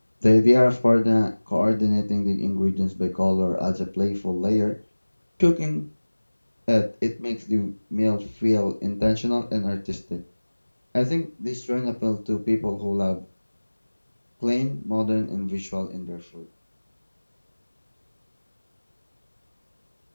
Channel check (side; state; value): both; inverted; correlation -1.00